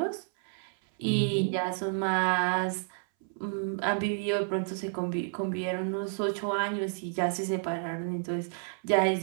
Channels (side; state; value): left; silent; 58 dB below the other